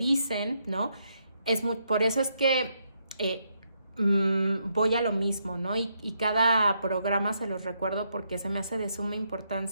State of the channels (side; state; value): both; inverted; correlation -0.78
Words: ¿no? Por eso es que voy a lo mismo, ¿no? Y cada programa se los recuerdo porque se me hace de suma